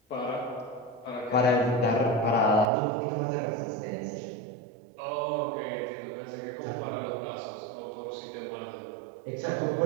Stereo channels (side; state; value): left; drops out; at 2.7 s